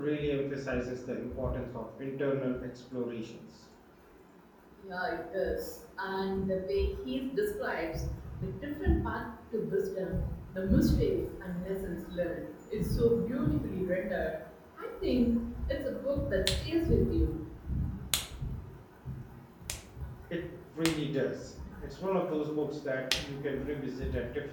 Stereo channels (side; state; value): both; identical; correlation 1.00